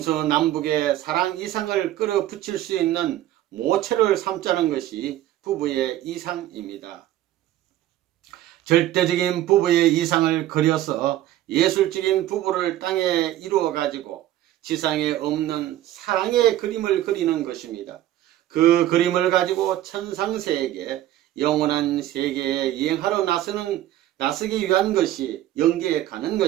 사랑 이상을 끌어붙일 수 있는 모체를 삼자는 것이 부부의 이상입니다. 절대적인 부부의 이상을 그려서 예술적인 부부를 땅에 이루어가지고 지상에 없는 사랑의 그림을 그리는 것입니다. 그 그림을 가지고 천상세계, 영원한 세계에 여행하러 나서기 위한 것이 영계에 가는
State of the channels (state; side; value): quieter; left; 13.6 dB